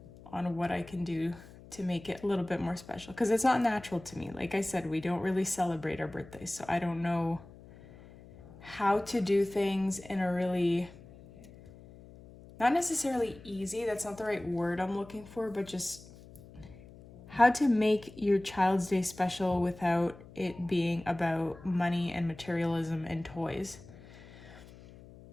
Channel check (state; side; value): noise; left; hum, 20 dB below the sound